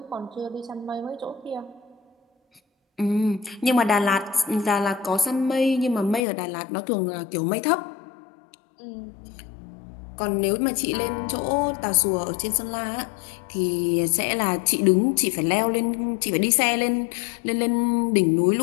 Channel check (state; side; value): drops out; right; at 6.2 s